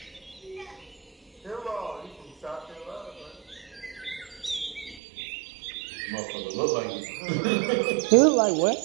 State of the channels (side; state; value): left; drops out; at 5.0 s